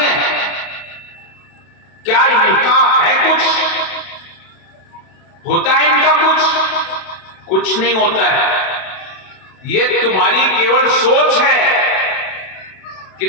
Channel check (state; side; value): late; right; 32 ms